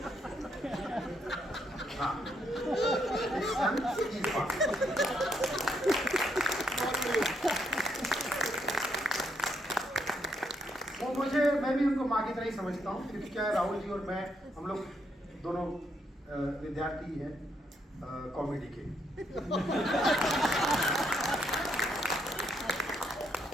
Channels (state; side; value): normal; both; correlation 0.76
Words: हाँ, एक सन की माँ। वो मैं भी उनको माँ की तरह ही समझता हूँ, क्योंकि क्या है, राहुल जी और मैं, हम लोग दोनों विद्यार्थी हैं कॉमेडी के।